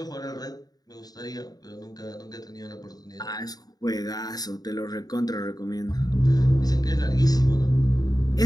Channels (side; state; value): right; late; 0.19 ms